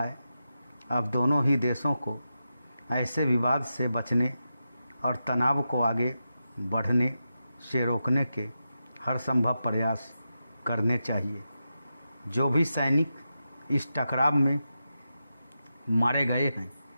अब दोनों ही देशों को ऐसे विवाद से बचने और तनाव को आगे बढ़ने से रोकने के हर संभव प्रयास करने चाहिए। जो भी सैनिक इस टकराव में मारे गए हैं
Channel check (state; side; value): inverted; both; correlation -0.89